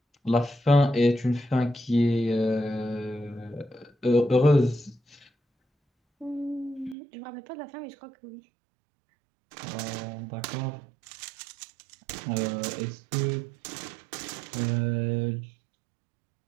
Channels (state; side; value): drops out; left; at 7.0 s